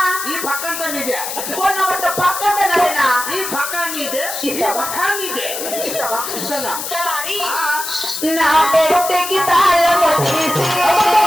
ఈ పక్కంతా నీదే ఫోన్ నెంబర్ పక్కన నరేనా ఈ పక్క నీదే ఈ పక్క నీదే ఇస్తావా ఇస్తానా సలారి నా పెట్టెకి తాళము తీసి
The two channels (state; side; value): noise; left; hiss, 6 dB below the sound